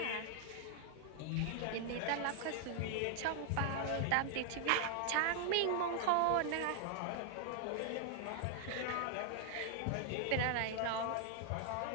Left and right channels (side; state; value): both; different; correlation 0.00